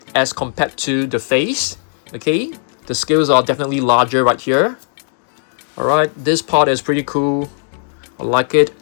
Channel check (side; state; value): right; silent; digital silence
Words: as compared to the face. Okay, the scales are definitely larger right here. Alright, this part is pretty cool. I like it.